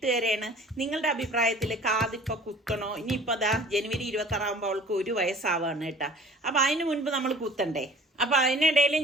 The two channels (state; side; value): normal; both; correlation 0.48